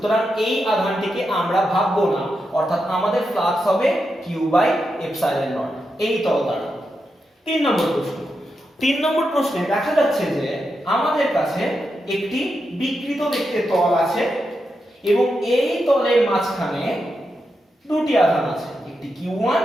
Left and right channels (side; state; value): both; normal; correlation 0.86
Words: এই আধানটিকে আমরা ভাববো না, অর্থাৎ আমাদের ফ্লাক্স হবে কিউ বাই এপসাইলন নট এই তল দ্বারা। 3 নম্বর প্রশ্ন। 3 নম্বর প্রশ্নে দেখা যাচ্ছে যে আমাদের কাছে একটি বিকৃত দেখতে তল আছে এবং এই তলের মাঝখানে দুটি আধান আছে, একটি Q1